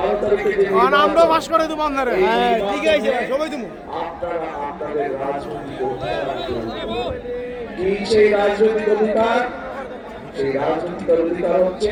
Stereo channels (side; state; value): both; identical; correlation 1.00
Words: তারিখে যে আমরা বাস করে দেব আপনারা। হ্যাঁ ঠিক আছে, সবাই তুমি আপনারা আপনাদের রাজনৈতিক অধিকার, কি সেই রাজনৈতিক অধিকার? সেই রাজনৈতিক অধিকার হচ্ছে